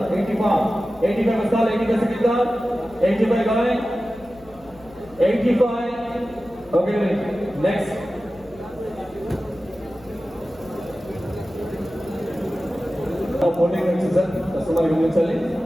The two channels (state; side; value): noise; left; hum, 24 dB below the sound